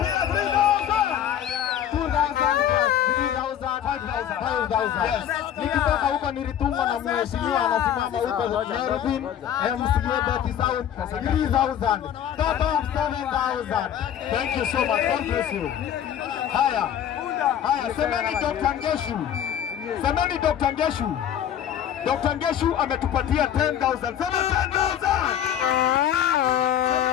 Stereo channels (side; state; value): right; quieter; 10.0 dB